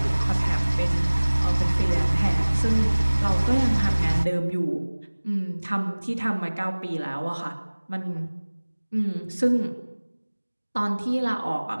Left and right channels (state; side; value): inverted; both; correlation -1.00